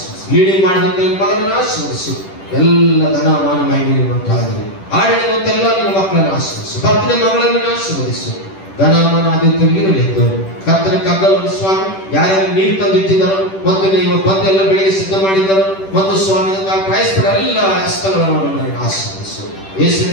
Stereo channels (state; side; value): late; right; 10 ms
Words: ಲೀಡಿಂಗ್ ಮಾಡಿದಂತ ಮಗನನ್ನು ಆಶೀರ್ವದಿಸು. ಎಲ್ಲ ಧನ ಮಾನ ಮಹಿಮೆ ಉಂಟಾಗಲಿ. ಆಡಿದಂತೆಲ್ಲ ನಿನ್ನ ಮಕ್ಕಳನ್ನು ಆಶೀರ್ವದಿಸು. ಭಕ್ತನ ಮಗಳನ್ನು ಆಶೀರ್ವದಿಸು. ಧನಮಾನ ಆದಿತ್ಯವಿರಲಿದ್ದು ಕರ್ತನ ಕಗ್ಗಲವನ್ನು ಸ್ವಾಮಿ ಯಾರ್ಯಾರು ನೀರು ತಂದಿಟ್ಟಿದ್ದಾರೋ ಮತ್ತು ನೀವು ಬಂದು ಎಲ್ಲ ಬೆಳೆಗೆ ಸಿದ್ಧ ಮಾಡಿದ್ದಾರೋ ಮತ್ತು ಸ್ವಾಮಿ ಕ್ರೈಸ್ತರ ಎಲ್ಲ ಹಸ್ತಗಳನ್ನು ಆಶೀರ್ವದಿಸು.